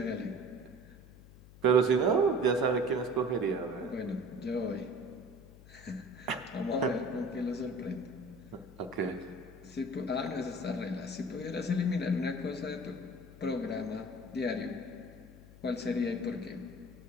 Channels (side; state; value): left; noise; hum, 19 dB below the sound